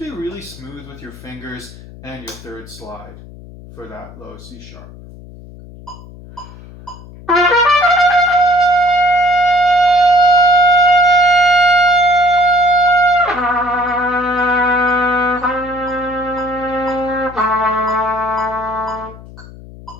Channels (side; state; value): left; noise; hum, 18 dB below the sound